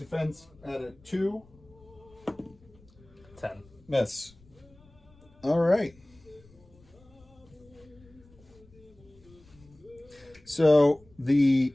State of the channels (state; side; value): noise; left; rumble, 27 dB below the sound